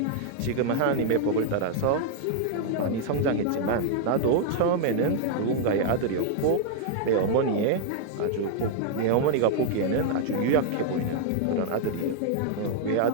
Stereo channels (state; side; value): different; both; correlation -0.01